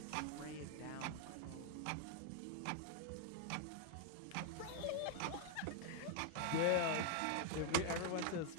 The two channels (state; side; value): different; both; correlation 0.00